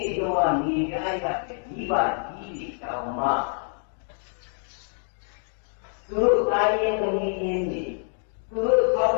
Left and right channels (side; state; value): right; silent; 58 dB below the other